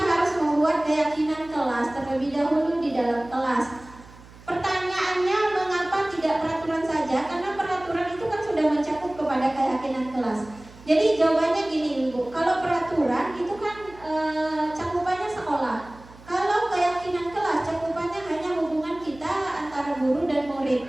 membuat keyakinan kelas terlebih dahulu di dalam kelas. Pertanyaannya, mengapa tidak peraturan saja? Karena peraturan itu kan sudah mencakup kepada keyakinan kelas. Jadi jawabannya gini Ibu, kalau peraturan itu kan cakupannya sekolah. Kalau keyakinan kelas cakupannya hanya hubungan kita antara guru dan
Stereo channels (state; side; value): noise; right; hum, 21 dB below the sound